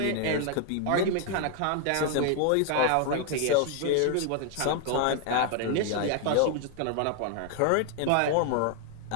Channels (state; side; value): different; both; correlation 0.00